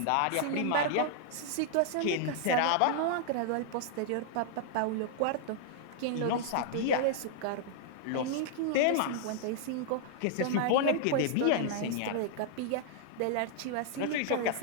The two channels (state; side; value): different; both; correlation -0.01